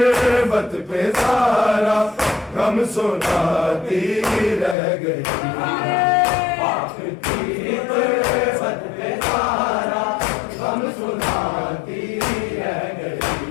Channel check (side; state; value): right; drops out; at 4.8 s